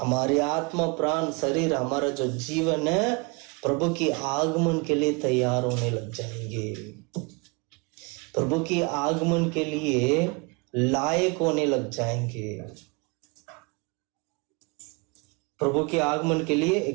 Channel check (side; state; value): left; quieter; 30.0 dB